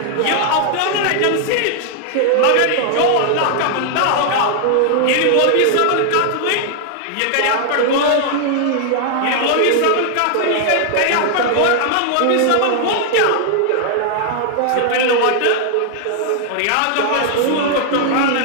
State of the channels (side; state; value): both; different; correlation 0.00